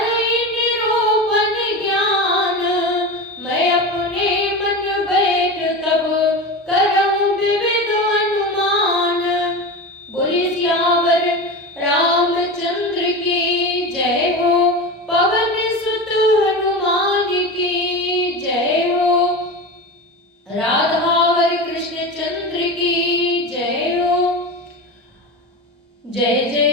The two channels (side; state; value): both; normal; correlation 0.25